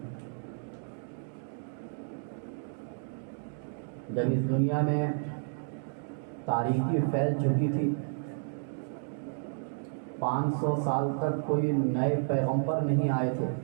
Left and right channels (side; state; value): left; silent; digital silence